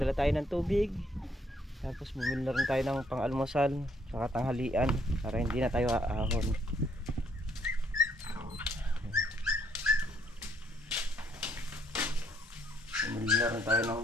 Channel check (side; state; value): both; normal; correlation 0.69